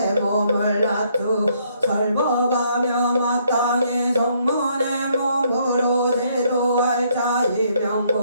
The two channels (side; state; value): both; inverted; correlation -0.69